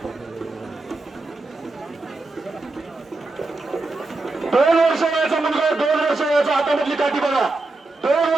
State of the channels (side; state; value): left; quieter; 3.2 dB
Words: दोन वर्ष वयाचा मुलगा, 2 वर्ष वयाचा, हातामधली काठी बघा, 2